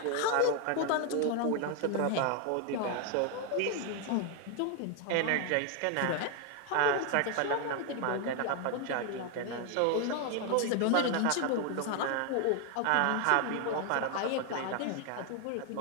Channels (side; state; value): both; different; correlation 0.01